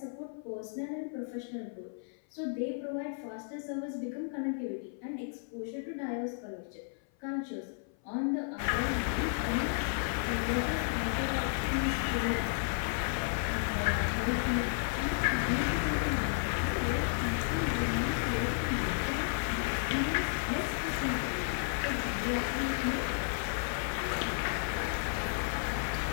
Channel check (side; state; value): right; silent; 55 dB below the other